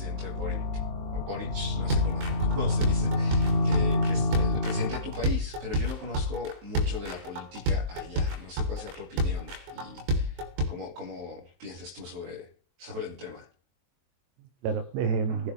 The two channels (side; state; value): left; late; 23 ms